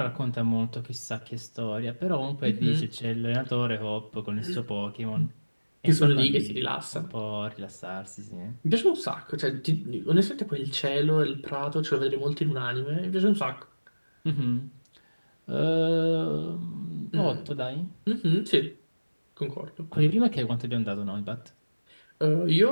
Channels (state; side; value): inverted; both; correlation -1.00